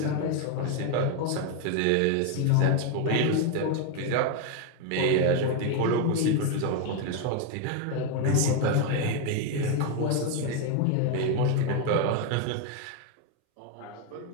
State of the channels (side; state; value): both; different; correlation 0.01